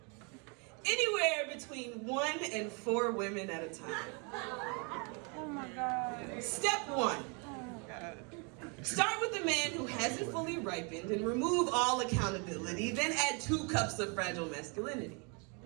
Anywhere between 1 and 4 women at a time. Oh my God. Step 1. Start with the man who hasn't fully ripened and remove all accountability, then add 2 cups of fragile masculinity.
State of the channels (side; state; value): left; quieter; 33.9 dB